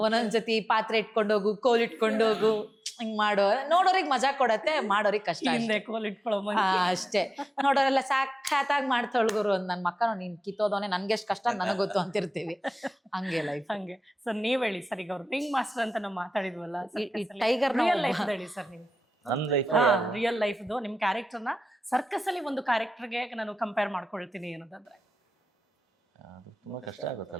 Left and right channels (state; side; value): normal; both; correlation 0.94